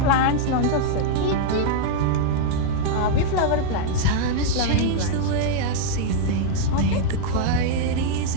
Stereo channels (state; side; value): different; both; correlation -0.01